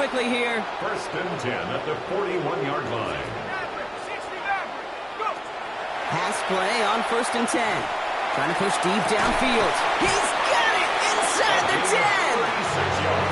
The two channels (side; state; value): both; identical; correlation 1.00